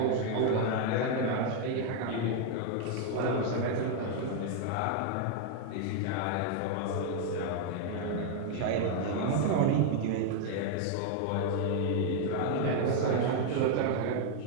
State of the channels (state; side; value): different; both; correlation 0.00